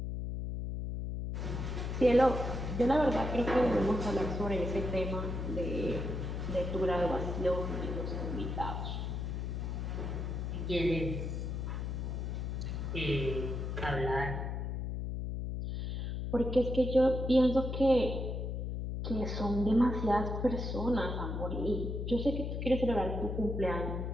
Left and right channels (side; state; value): left; noise; hum, 3 dB below the sound